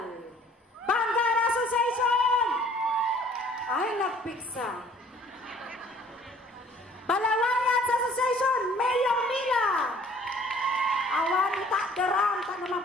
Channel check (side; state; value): both; normal; correlation 0.56